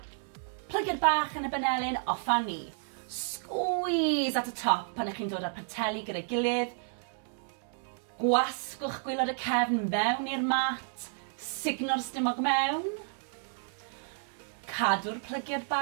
plygio'r bach yn y benelyn, offa ni. Squeeze at y top pan ych chi'n dod â'r poteli gyda'i gilydd. Gwasgwch gwylod y cefn mewn i'r mat, signo'r stumog mewn. Cadw'r plygio'r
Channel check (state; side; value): silent; left; 57 dB below the other